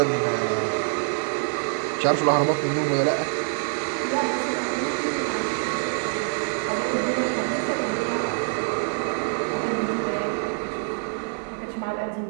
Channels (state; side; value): silent; left; 62 dB below the other